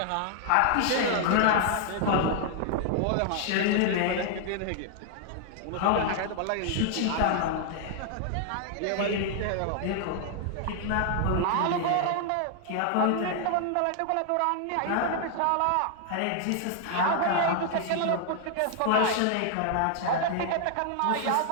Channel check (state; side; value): different; both; correlation 0.00